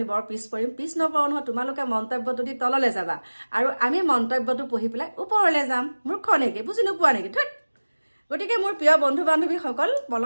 বৰ পিছ পৰিম পিছ নপৰোঁ নহয় তোমালোকে মন্তব্যটো দি তললৈ যাবা আৰু আমি মন্তব্যটো পঢ়ি পেলাই ওপৰলৈ যাম মূৰ্খ নেকি বুজি নোপোৱা নেকি ধুত গতিকে মোৰ প্ৰিয় বন্ধু বান্ধৱীসকল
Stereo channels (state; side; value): inverted; both; correlation -1.00